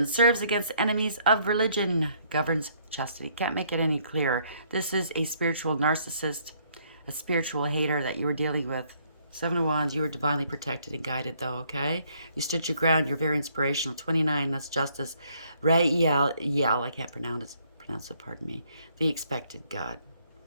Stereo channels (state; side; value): inverted; both; correlation -0.67